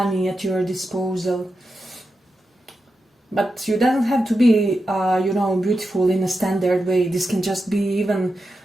at your disposal. But you don't have to be, you know, beautiful in a standard way. This can just be even,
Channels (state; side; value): normal; both; correlation 0.89